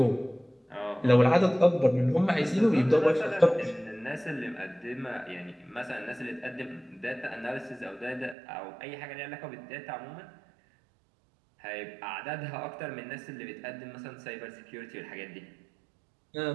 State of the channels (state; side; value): drops out; left; at 8.3 s